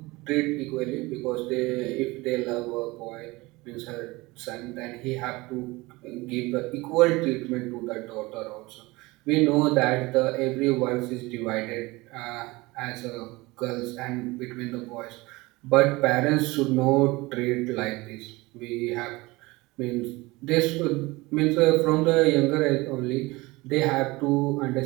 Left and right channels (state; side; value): quieter; left; 22.1 dB